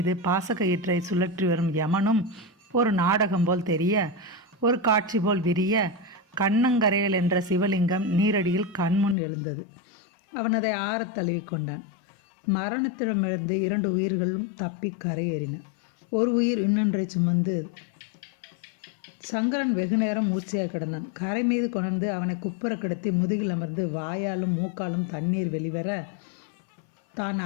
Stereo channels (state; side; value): drops out; right; at 9.2 s